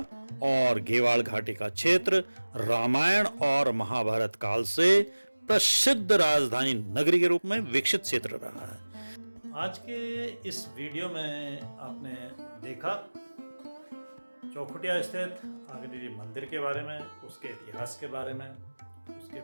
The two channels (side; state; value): both; inverted; correlation -1.00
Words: और गेवाल घाटी का क्षेत्र रामायण और महाभारत काल से प्रसिद्ध राजधानी नगरी के रूप में विकसित क्षेत्र रहा है। आज के इस वीडियो में आपने देखा चौखुटिया स्थित अग्नेरी मंदिर के बारे में, उसके इतिहास के बारे में, उसके